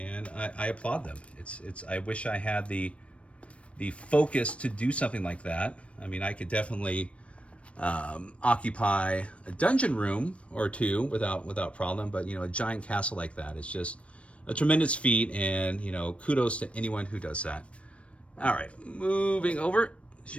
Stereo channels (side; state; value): right; late; 0.062 ms